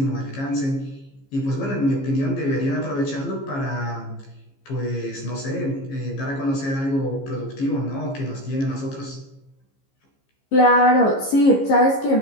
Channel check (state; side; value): late; right; 15 ms